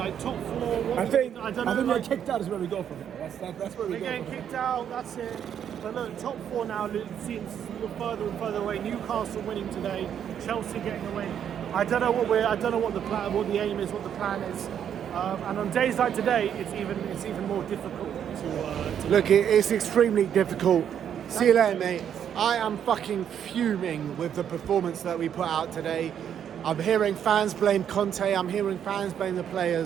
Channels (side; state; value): left; quieter; 9.0 dB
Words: top 4. I think we're kicked out is where we go from here. That's where we We're go. getting kicked out. That's it. But look, top 4 now seems further and further away. Newcastle winning today. Chelsea getting away. I don't know what the aim is, what the plan is. And on days like today, it's even more difficult to Look, it's extremely difficult. See you later, mate. I am fucking fuming with the performance that we put out today. I'm hearing fans blame Conte, I'm hearing fans blame the